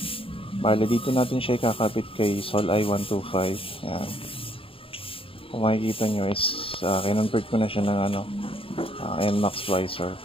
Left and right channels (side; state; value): right; late; 0.27 ms